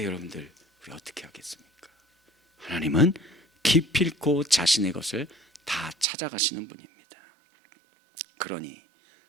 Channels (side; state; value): left; drops out; at 6.1 s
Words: 여러분들 우리 어떻게 하겠습니까? 하나님은 기필코 자신의 것을 다 찾아가시는 분입니다. 그러니